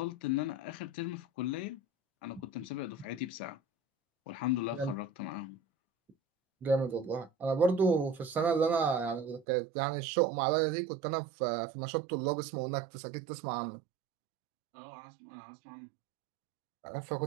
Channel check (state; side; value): drops out; left; at 9.5 s